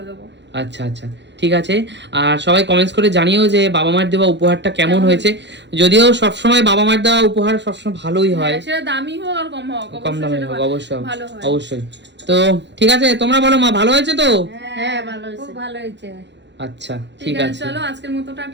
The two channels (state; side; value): late; left; 0.52 ms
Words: দেবো। আচ্ছা আচ্ছা, ঠিক আছে। আর সবাই কমেন্টস করে জানিও যে বাবা মায়ের দেওয়া উপহারটা কেমন হয়েছে। যদিও সবসময় বাবা মায়ের দেওয়া উপহার সবসময় ভালোই হয়, হ্যাঁ, সেটা দামি হোক আর কম হোক, কম অবশ্যই দামে সেটা হোক, অবশ্যই ভালো হয়। অবশ্যই। তো ঠিক আছে, তোমরা বলো মা, ভালো হয়েছে তো? হ্যাঁ ভালো হয়েছে খুব ভালো হয়েছে আচ্ছা ঠিক ঠিক আছে, আছে, চলো আজকের মতো